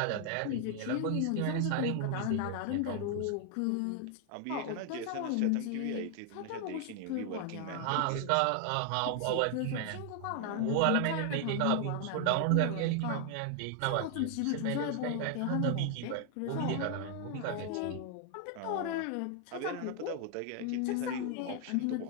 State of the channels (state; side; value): different; both; correlation 0.00